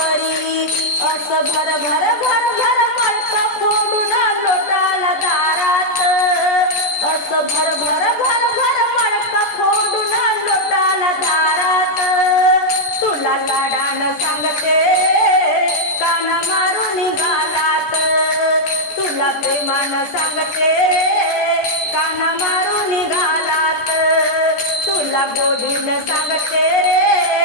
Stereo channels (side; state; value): right; late; 14 ms